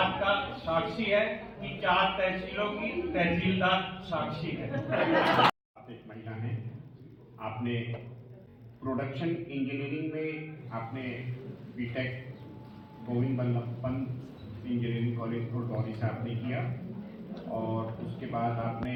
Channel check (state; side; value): identical; both; correlation 1.00